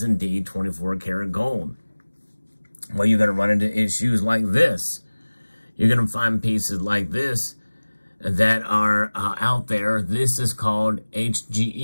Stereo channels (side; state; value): both; inverted; correlation -1.00